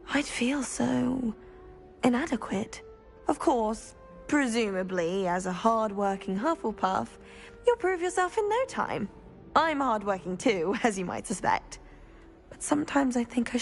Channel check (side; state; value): both; identical; correlation 1.00